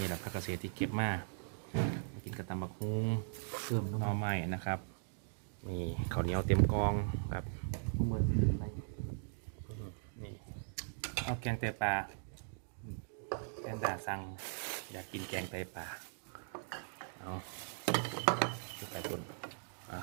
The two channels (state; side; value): silent; left; digital silence